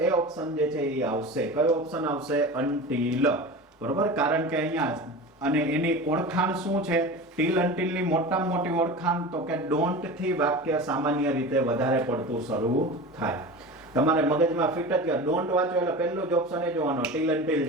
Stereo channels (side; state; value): both; normal; correlation 0.31